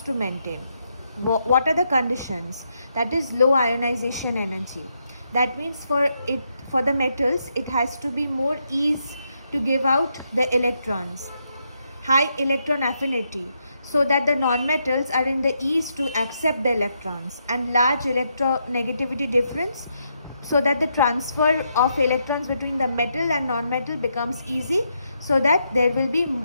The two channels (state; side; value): inverted; both; correlation -0.80